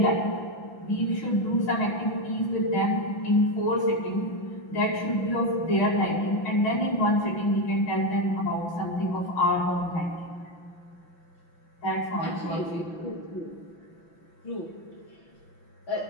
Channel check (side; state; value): right; late; 5.9 ms